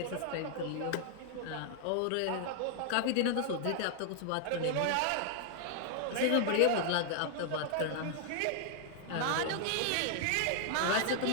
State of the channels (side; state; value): both; different; correlation 0.00